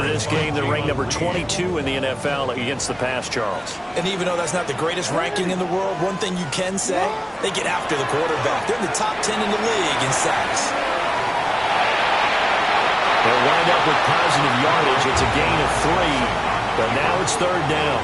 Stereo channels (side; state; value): both; identical; correlation 1.00